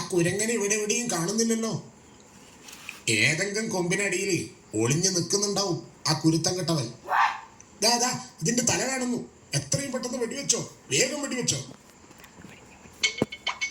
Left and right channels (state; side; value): identical; both; correlation 1.00